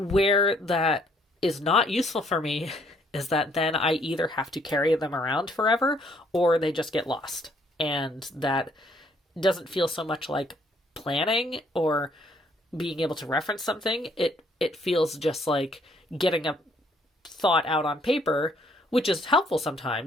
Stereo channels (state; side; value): normal; both; correlation 0.66